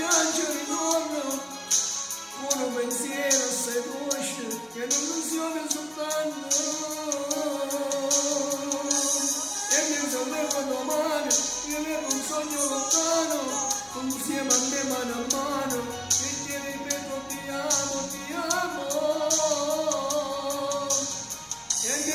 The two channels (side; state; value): both; identical; correlation 1.00